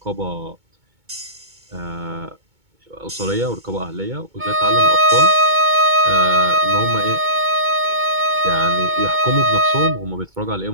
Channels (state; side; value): late; left; 2.2 ms